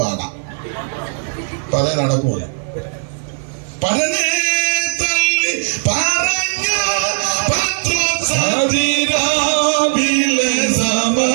പാടാം. അപ്പൊ അതേ നടക്കൂല. പരനെ തള്ളി പറഞ്ഞ പത്രോസാതിരാവിലെ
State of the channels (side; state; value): left; silent; 61 dB below the other